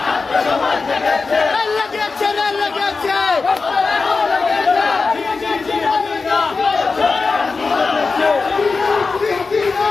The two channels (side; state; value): right; quieter; 4.3 dB